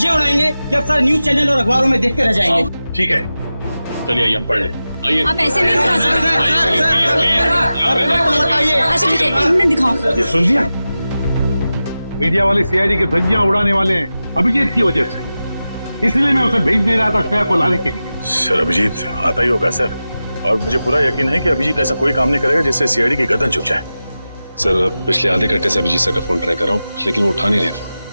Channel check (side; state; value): both; inverted; correlation -0.94